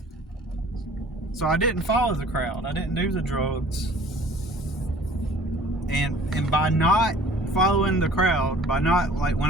I didn't follow the crowd. I didn't do the drugs. And by not following the crowd, by not, like, when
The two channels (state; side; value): normal; both; correlation 0.50